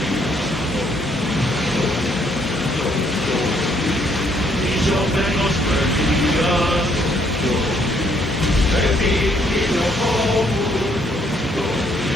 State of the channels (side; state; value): both; normal; correlation 0.68